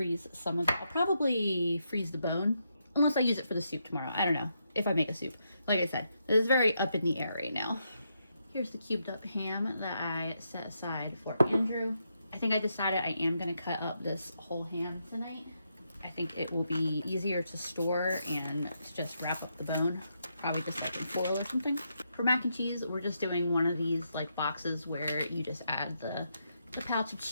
some of it. I'll probably freeze the bone, unless I use it for the soup tomorrow. I don't know if I make a soup. Like I said, it is very up in the air right now. Here's the cubed up ham that I set aside for Andrew. I think I decided I am going to cut up this whole ham tonight. I think it will be easier to store and to just wrap up the bone. Probably just like in foil or something. For mac and cheese, we're just doing one of these like boxes where you just add the pouch of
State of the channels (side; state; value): both; inverted; correlation -0.81